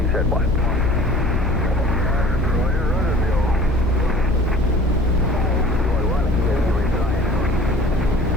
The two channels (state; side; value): normal; both; correlation 0.47